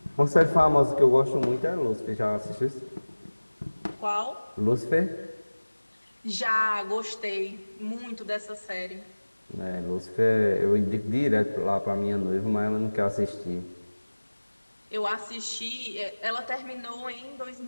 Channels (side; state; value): both; inverted; correlation -1.00